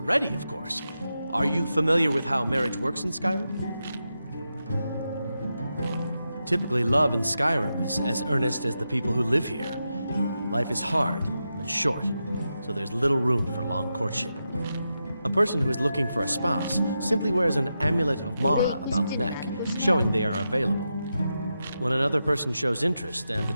of course. Are you familiar with how marriage works in Skyrim? Typically, love in Skyrim is as earnest as the people who live here. Life is hard and short, so there's little room for long courtship. A person who is looking for a spouse simply wears an amulet of Mara about the neck, showing they are available. When another person shows interest and the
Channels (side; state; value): both; inverted; correlation -0.88